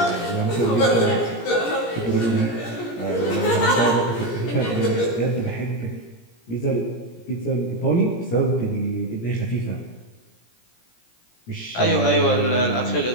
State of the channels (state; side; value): late; right; 17 ms